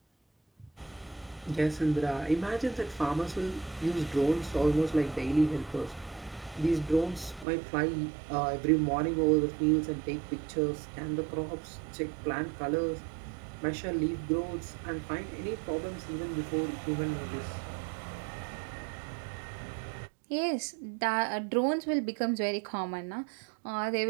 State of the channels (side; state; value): left; drops out; at 7.5 s